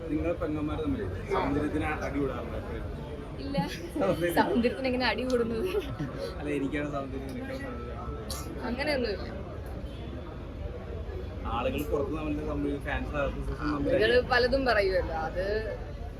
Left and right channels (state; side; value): identical; both; correlation 1.00